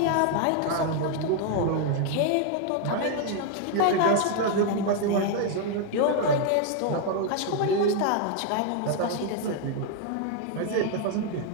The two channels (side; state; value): both; different; correlation 0.00